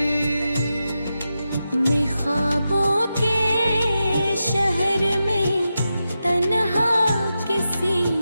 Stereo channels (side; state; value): both; inverted; correlation -0.89